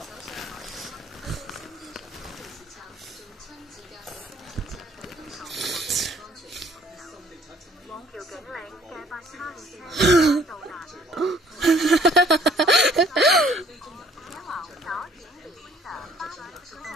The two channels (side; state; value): both; normal; correlation 0.58